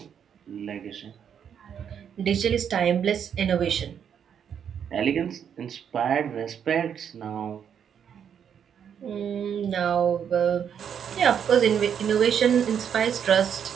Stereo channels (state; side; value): quieter; left; 8.2 dB